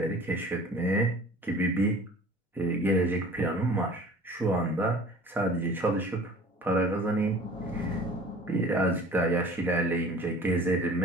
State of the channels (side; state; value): both; normal; correlation 0.46